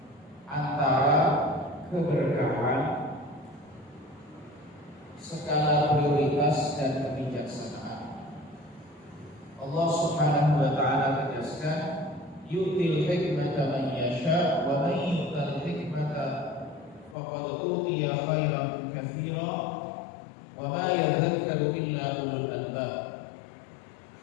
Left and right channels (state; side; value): drops out; right; at 17.2 s